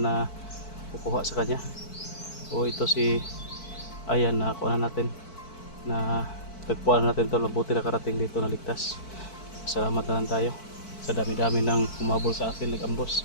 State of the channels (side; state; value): right; late; 4.5 ms